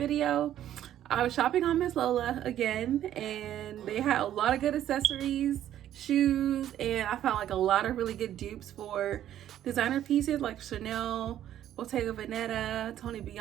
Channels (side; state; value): left; quieter; 11.6 dB